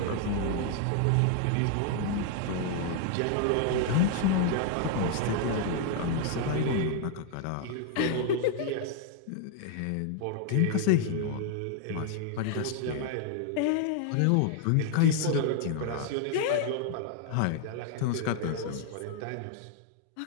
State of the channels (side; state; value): both; different; correlation 0.00